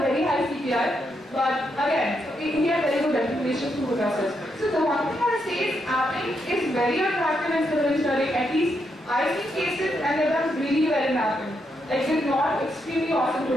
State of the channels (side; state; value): both; normal; correlation 0.80